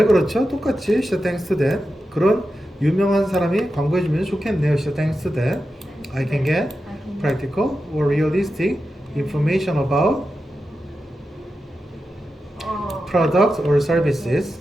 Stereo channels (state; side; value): normal; both; correlation 0.90